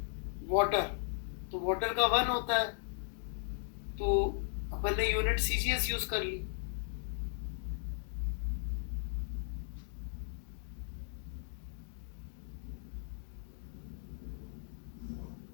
वाटर, तो वाटर का 1 होता है, तो अपन ने यूनिट सीजीएस यूज कर ली।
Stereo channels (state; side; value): silent; right; digital silence